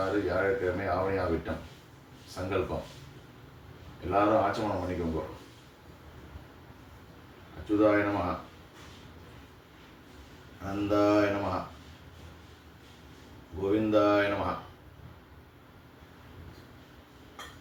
வியாழக்கிழமை ஆவணியா விட்டம் சங்கல்பம். எல்லாரும் ஆச்சமனம் பண்ணிக்கோங்க. அச்சுதாய நமஹ, அனந்தாய நமஹ, கோவிந்தாய நமஹ,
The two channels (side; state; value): both; identical; correlation 1.00